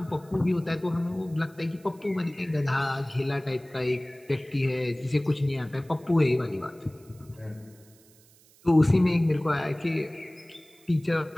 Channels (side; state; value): right; noise; hiss, 28 dB below the sound